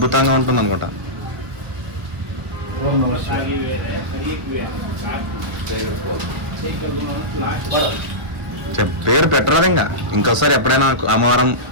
ఉంటుంది అనుకుంటా. పేరు పెట్టరాదు. ఇంకోసారి ఎప్పుడైనా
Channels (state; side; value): late; left; 1.4 ms